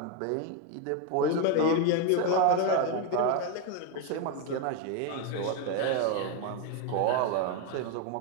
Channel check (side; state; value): both; different; correlation 0.01